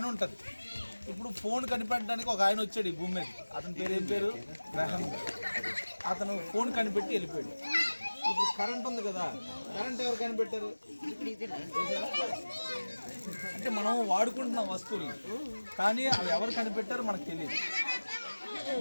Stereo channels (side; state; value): both; inverted; correlation -1.00